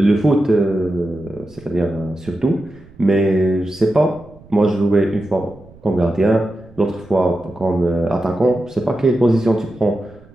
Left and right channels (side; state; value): right; noise; rumble, 24 dB below the sound